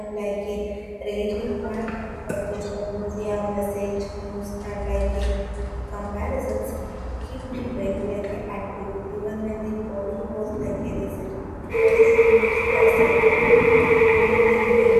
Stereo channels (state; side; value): identical; both; correlation 1.00